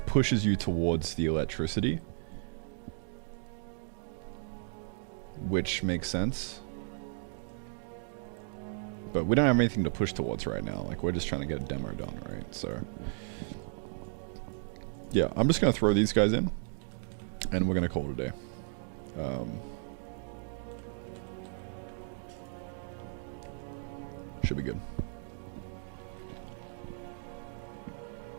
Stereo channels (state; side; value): silent; left; digital silence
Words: pushes you towards the electricity, which makes sense. But we don't have anything to push towards right now. Like, we're just trying to get a demo done, right? So, yeah, I'm just going to throw these guys in, and we're going to call it a day. Should be good.